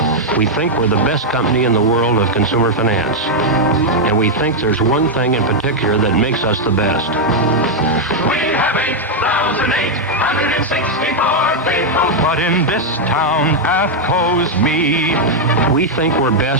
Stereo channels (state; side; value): normal; both; correlation -0.01